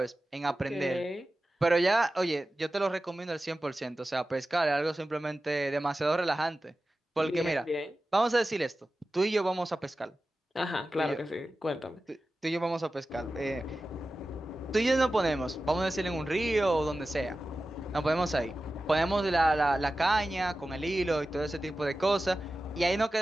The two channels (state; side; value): normal; both; correlation 0.94